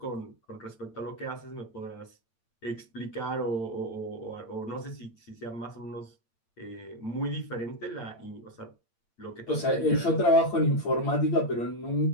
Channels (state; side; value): late; right; 8.8 ms